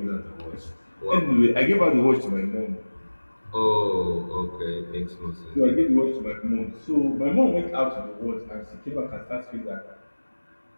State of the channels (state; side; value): inverted; both; correlation -1.00